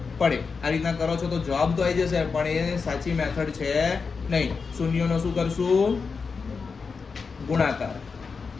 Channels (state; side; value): quieter; right; 5.1 dB